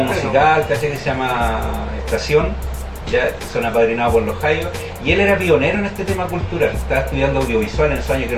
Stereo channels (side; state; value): both; identical; correlation 1.00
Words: musical que se llama Estación, ya son apadrinados por los Jaios, y él era pionero en este tema cultural. Estaba estudiando audiovisual en esos años, que